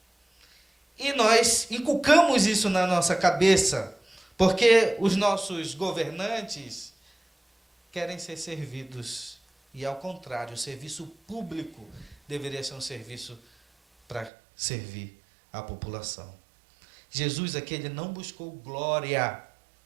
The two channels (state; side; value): drops out; left; at 14.3 s